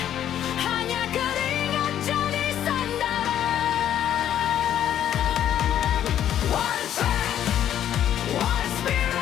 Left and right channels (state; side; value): quieter; right; 10.7 dB